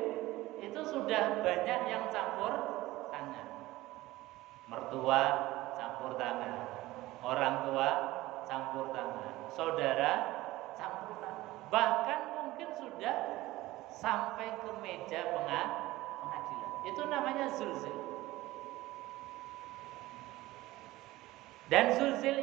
itu sudah banyak yang campur tangan. Mertua campur tangan, orang tua campur tangan, saudara campur tangan, bahkan mungkin sudah sampai ke meja pengadilan. Itu namanya zulzil. Dan zulzil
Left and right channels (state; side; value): quieter; left; 18.0 dB